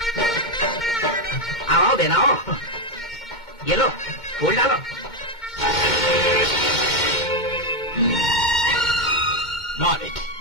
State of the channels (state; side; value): late; right; 2.2 ms